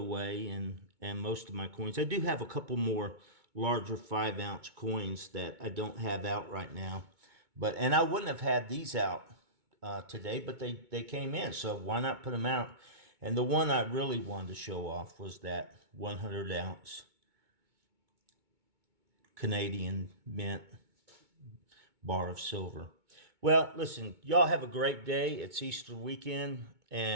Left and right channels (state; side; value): late; left; 2.2 ms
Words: and most of my coins. I do have a couple more larger 5-ounce coins that I don't have out right now. And I wouldn't have had these out today, but they came in, so why not put them out? And the one I really wanted to show off was that 100-ounce Canadian Mint bar of silver. Well, listen, y'all have a great day. It's Easter weekend,